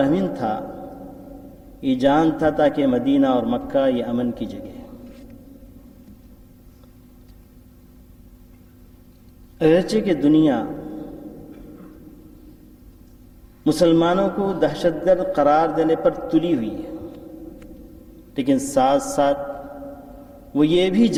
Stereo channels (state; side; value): identical; both; correlation 1.00